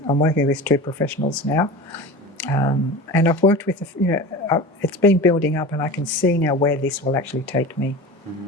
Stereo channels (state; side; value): normal; both; correlation 0.33